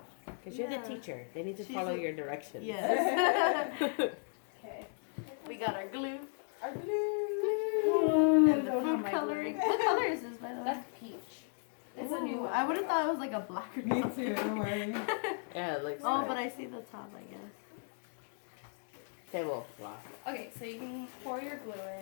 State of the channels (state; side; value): silent; right; 54 dB below the other